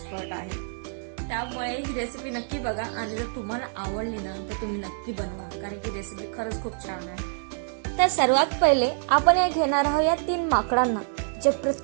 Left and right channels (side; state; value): left; silent; digital silence